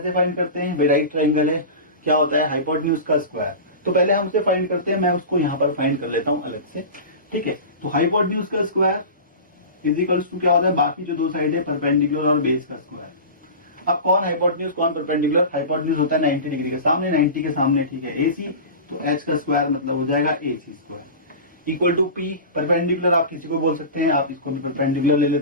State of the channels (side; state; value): both; inverted; correlation -0.30